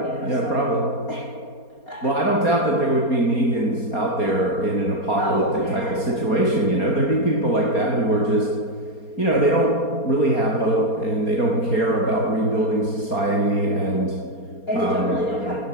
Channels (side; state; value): right; late; 4.3 ms